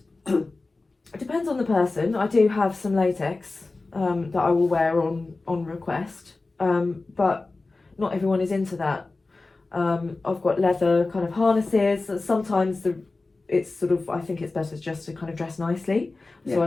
It depends on the person. I do have some latex that I will wear on request, but not everyone is into that. I've got leather kind of harnesses. Sometimes it's sort of, I think it's better just to kind of dress nicely. Yeah. So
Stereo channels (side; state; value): right; quieter; 3.4 dB